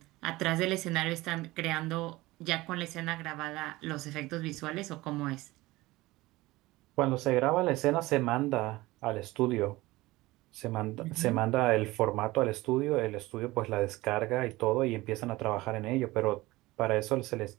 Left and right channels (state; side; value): quieter; left; 19.5 dB